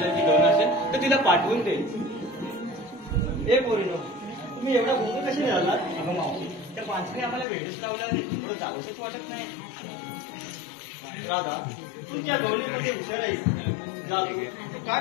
गौण असेल तर तिला पाठवून दे. ए पोरीनो, तुम्ही एवढा गोंधळ कशी झाला? अगं मावशी, त्या पांचने आम्हाला भेटच लावला नाही, थोडं जावंसच वाटत नाही. राधा, तू त्या गवळीमध्ये हुशार आहेस. जा तू काय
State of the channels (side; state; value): right; drops out; at 7.5 s